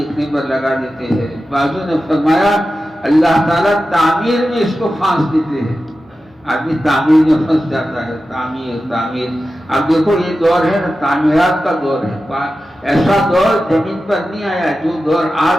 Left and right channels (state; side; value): normal; both; correlation 0.93